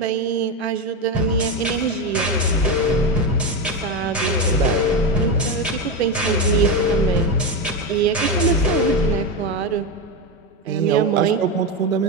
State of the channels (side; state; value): both; normal; correlation 0.13